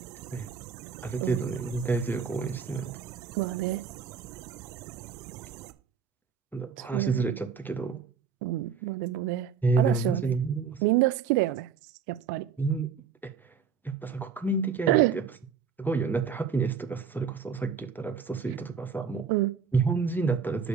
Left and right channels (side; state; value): left; quieter; 6.5 dB